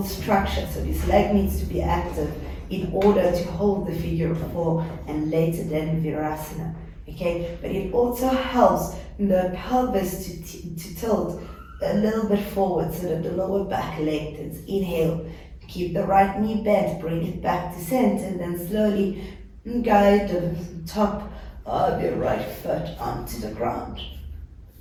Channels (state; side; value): identical; both; correlation 1.00